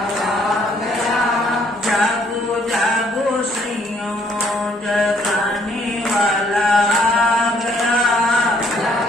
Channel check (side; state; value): both; normal; correlation 0.65